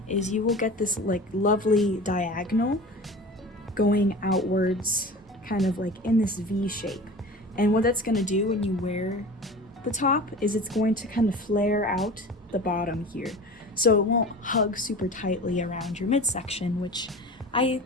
is you will get this like lovely diagonal going outwards, kind of like in this V shape. And what that's going to do when you wear the top is it's going to kind of flare out the bottom here. So it won't hug super tightly around your midsection, which I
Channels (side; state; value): both; normal; correlation 0.36